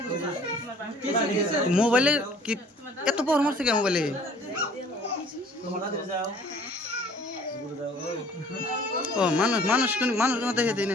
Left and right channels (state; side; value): normal; both; correlation 0.53